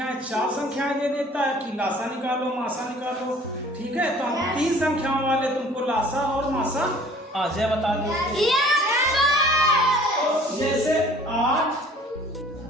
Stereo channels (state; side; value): normal; both; correlation 0.51